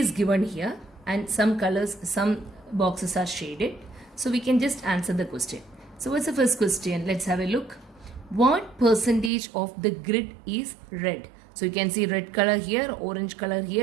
given here and some colors, some boxes are shaded. So we can just answer the question. So what's the first question? Let's have a look. What percentage of the grid is red? So you can see red color here, orange color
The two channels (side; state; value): left; drops out; at 9.3 s